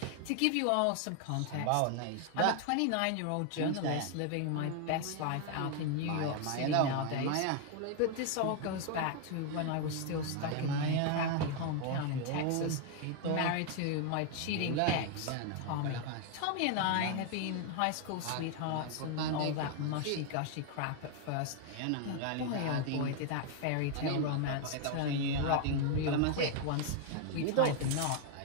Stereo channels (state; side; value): different; both; correlation 0.00